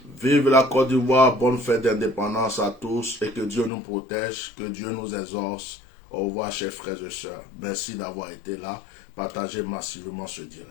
Vive la Côte d'Ivoire, bonne fête d'indépendance à tous et que Dieu nous protège, que Dieu nous exauce. Au revoir, chers frères et sœurs. Merci d'avoir été là. Partagez massivement ce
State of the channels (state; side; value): drops out; right; at 3.7 s